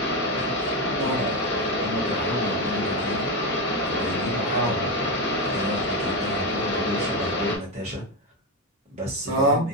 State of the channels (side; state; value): both; normal; correlation 0.11